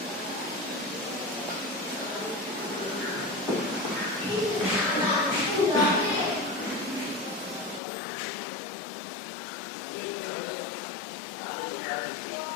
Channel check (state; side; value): drops out; right; at 7.8 s